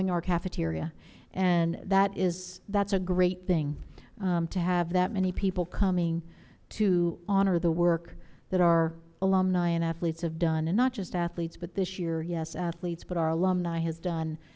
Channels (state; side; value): identical; both; correlation 1.00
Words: our cafeteria. And that's a great thing. To have that many people coming to honor the work that our alumni and athletes have done. And not just athletes, but this year, yes, athletes, but our alumni has done,